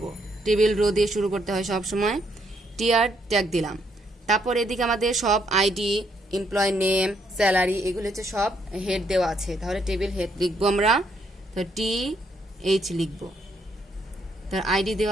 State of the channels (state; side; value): normal; both; correlation 0.73